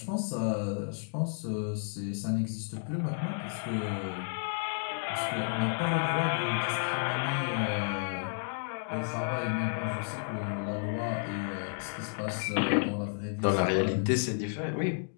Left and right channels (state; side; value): silent; right; digital silence